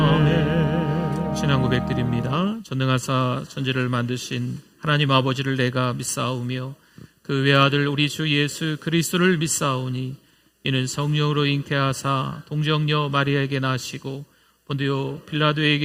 아멘. 신앙 고백드립니다. 전능하사 천지를 만드신 하나님 아버지를 내가 믿사오며 그 외아들 우리 주 예수 그리스도를 믿사오니 이는 성령으로 잉태하사 동정녀 마리아에게 나시고 본디오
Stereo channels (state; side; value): identical; both; correlation 1.00